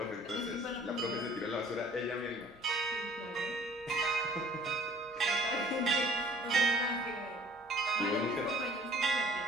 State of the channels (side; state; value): both; normal; correlation 0.53